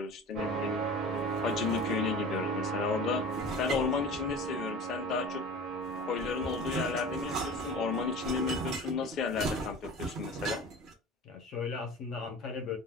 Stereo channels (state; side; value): normal; both; correlation 0.37